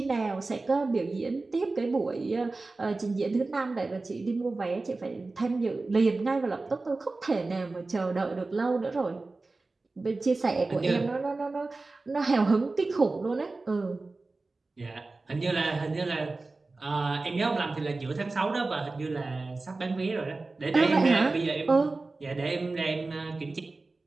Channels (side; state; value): left; quieter; 3.5 dB